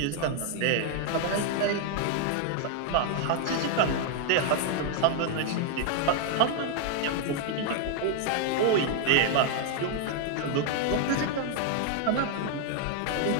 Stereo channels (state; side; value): different; both; correlation 0.00